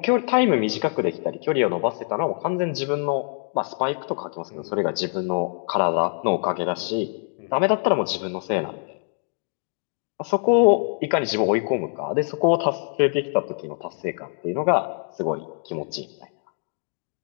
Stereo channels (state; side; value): silent; right; 55 dB below the other